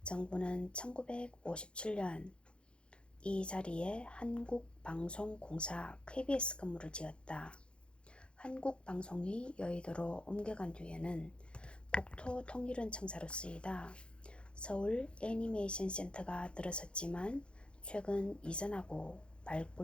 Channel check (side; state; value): right; late; 0.056 ms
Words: 정부는 1957년 이 자리에 한국방송공사 KBS 건물을 지었다. 한국방송이 여의도로 옮겨간 뒤에는 국토통일원 청사로 쓰이다 서울 애니메이션 센터가 들어섰지만 최근 이전하고